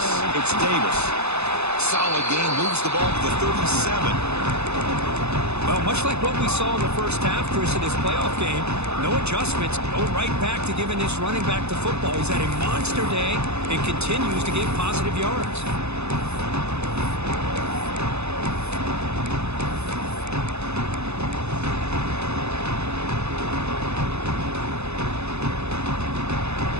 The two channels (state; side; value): late; left; 0.81 ms